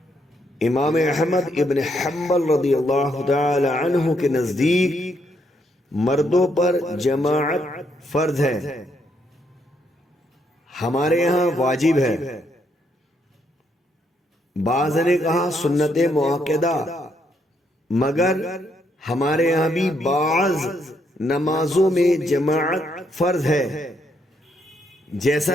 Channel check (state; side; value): normal; both; correlation 0.75